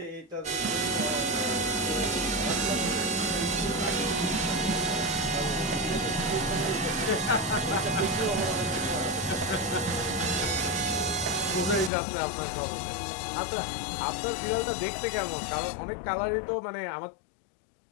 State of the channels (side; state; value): right; drops out; at 11.9 s